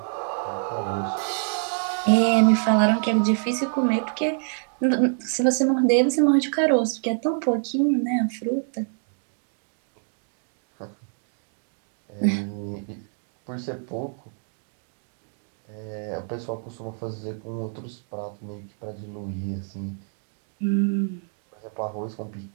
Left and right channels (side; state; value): left; silent; 61 dB below the other